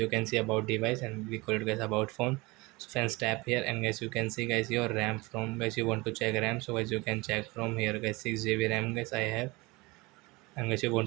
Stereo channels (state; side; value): quieter; left; 23.8 dB